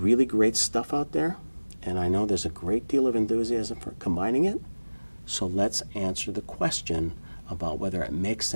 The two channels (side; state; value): both; inverted; correlation -1.00